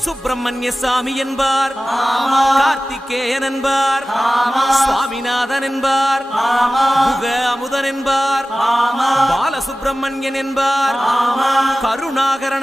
சுப்பிரமணிய சாமி என்பார், கார்த்திகேயன் என்பார், சுவாமிநாதன் என்பார், முக அமுதன் என்பார், பாலசுப்பிரமணியன் என்பார்,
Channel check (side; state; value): both; normal; correlation 0.96